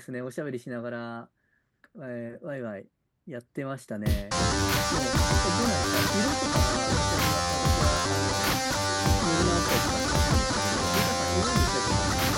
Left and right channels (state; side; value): identical; both; correlation 1.00